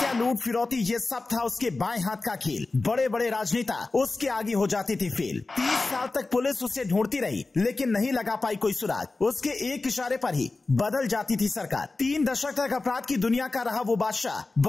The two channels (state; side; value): quieter; right; 3.5 dB